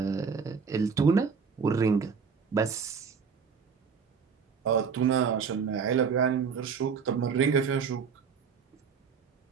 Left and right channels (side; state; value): left; quieter; 6.0 dB